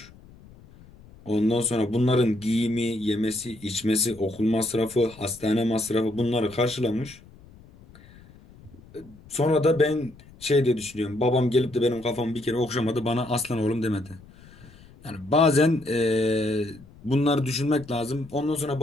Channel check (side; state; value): left; noise; rumble, 23 dB below the sound